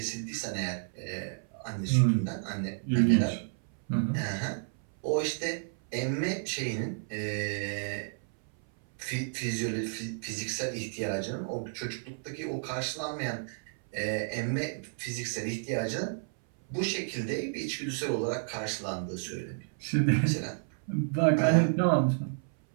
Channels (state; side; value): silent; left; 57 dB below the other